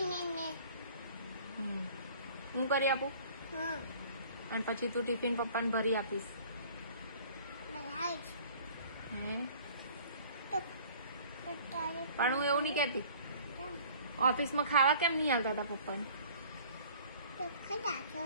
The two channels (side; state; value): both; inverted; correlation -0.50